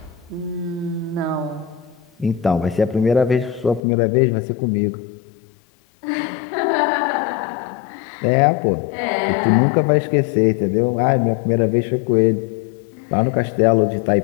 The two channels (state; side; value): drops out; right; at 3.8 s